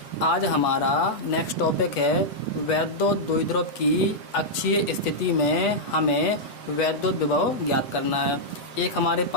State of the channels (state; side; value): late; right; 8.3 ms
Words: आज हमारा नेक्स्ट टॉपिक है वैद्युत द्विध्रुव की अक्षीय स्थिति में हमें वैद्युत विभव ज्ञात करना है। एक हमारे